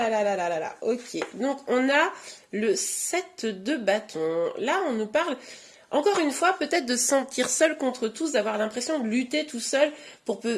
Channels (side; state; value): both; identical; correlation 1.00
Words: là là là là là, ok. Donc, on a le 7 de bâton. Là, on nous parle, encore une fois, peut-être de se sentir seul contre tous, d'avoir l'impression de lutter tout seul pour